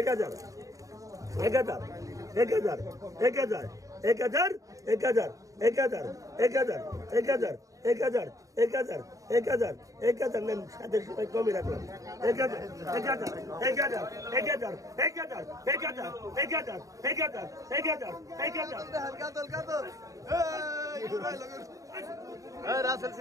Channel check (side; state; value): left; late; 0.16 ms